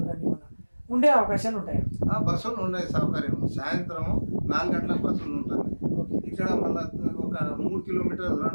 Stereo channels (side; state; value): both; inverted; correlation -1.00